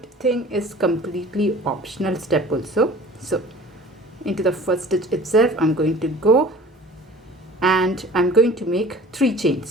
thing is completely optional step also. So into the first stitch itself I'm going to go and I'm going to make 3 chain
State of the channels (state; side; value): normal; both; correlation 0.45